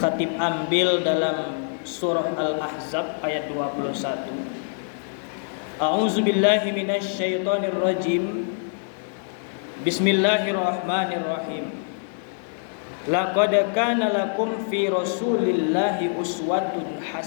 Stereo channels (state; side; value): silent; right; 62 dB below the other